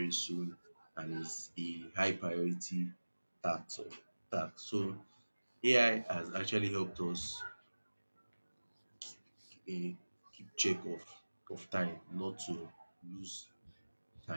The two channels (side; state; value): both; inverted; correlation -1.00